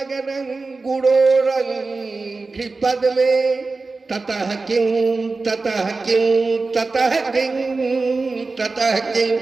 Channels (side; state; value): left; quieter; 3.8 dB